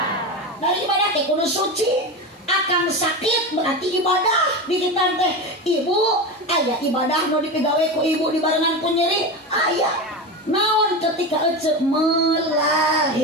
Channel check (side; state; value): both; normal; correlation 0.22